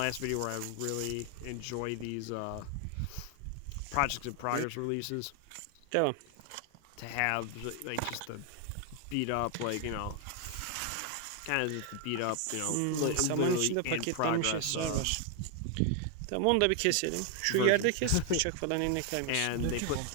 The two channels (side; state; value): both; different; correlation 0.00